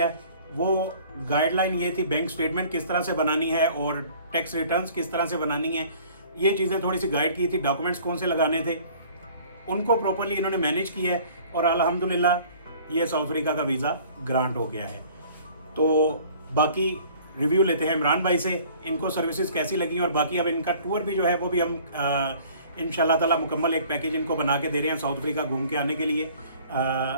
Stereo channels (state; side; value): inverted; both; correlation -0.51